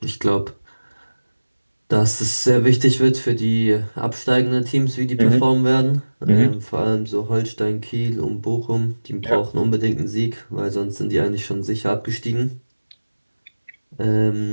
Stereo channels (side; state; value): both; inverted; correlation -1.00